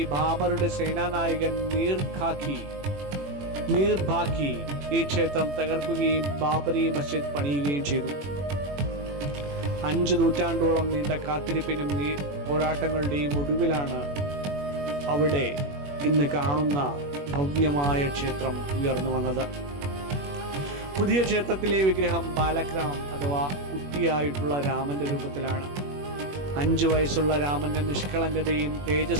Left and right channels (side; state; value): left; late; 21 ms